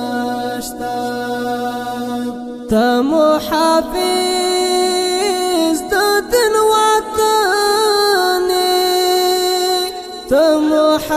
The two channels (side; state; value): both; identical; correlation 1.00